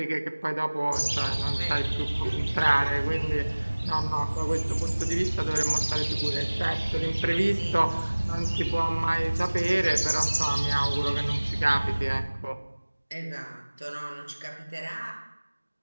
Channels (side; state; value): both; inverted; correlation -1.00